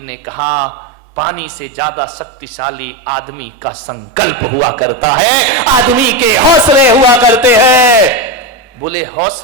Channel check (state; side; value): normal; both; correlation 0.14